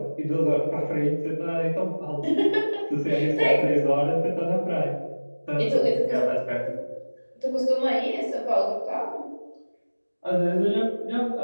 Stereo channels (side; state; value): both; inverted; correlation -1.00